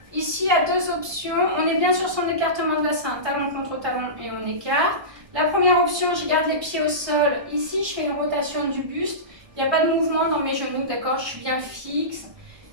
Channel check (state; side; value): late; left; 1.2 ms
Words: ici, il y a deux options. On est bien sur son écartement de bassin, talon contre talon et on écarte. La première option, je garde les pieds au sol. Ici, je fais une rotation du buste. Il n'y a pas de mouvement dans mes genoux, d'accord? Je suis bien fixe.